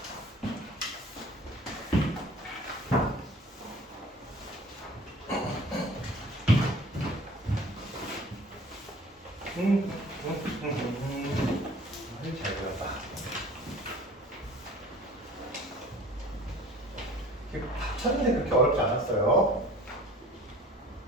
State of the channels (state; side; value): normal; both; correlation 0.46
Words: 잘 그렸다. 쳤는데 그렇게 어렵지 않았어요.